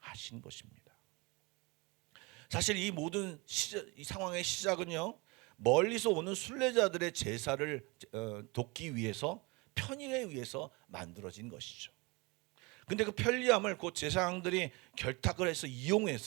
것입니다. 사실 이 모든 이 상황의 시작은요, 멀리서 오는 순례자들의 제사를 돕기 위해서, 편의에 의해서 만들어진 것이죠. 근데 그 편리함을 그 제사장들이 결탁을 해서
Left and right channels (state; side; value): quieter; left; 26.6 dB